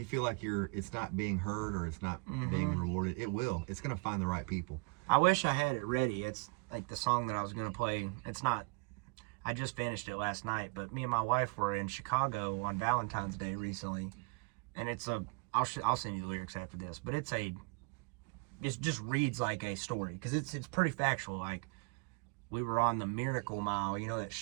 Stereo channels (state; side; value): quieter; left; 33.3 dB